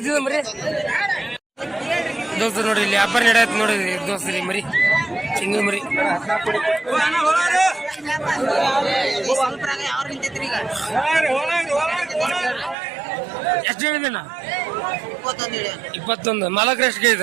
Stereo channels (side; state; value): left; drops out; at 12.8 s